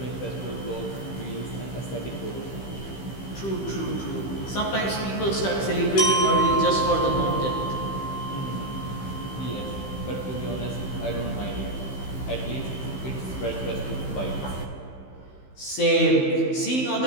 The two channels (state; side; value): late; right; 15 ms